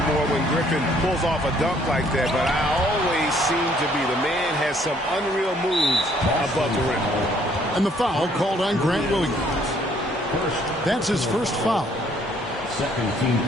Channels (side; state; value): both; normal; correlation 0.64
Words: when Griffin pulls off a dunk like that, but I always seem to be. The man has some unreal moves above the rim. And the foul called on Grant Williams. That's his first foul. Second team